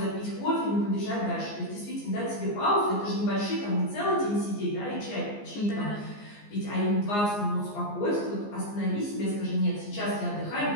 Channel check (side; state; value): right; late; 14 ms